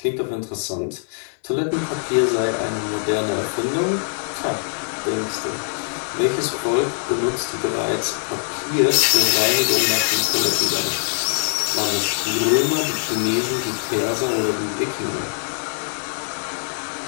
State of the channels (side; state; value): right; silent; 61 dB below the other